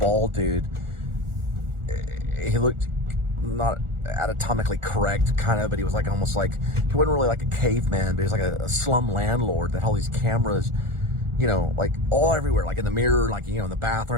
dude. He looked not anatomically correct, kind of, but he was like almost like, he wasn't really like a caveman, but he was like a slum landlord that had all these cameras, you know, like all everywhere, like in the mirror, like, you know, in the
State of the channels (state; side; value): late; left; 1.4 ms